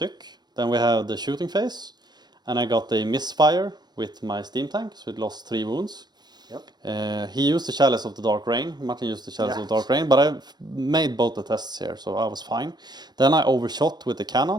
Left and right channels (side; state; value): left; late; 0.20 ms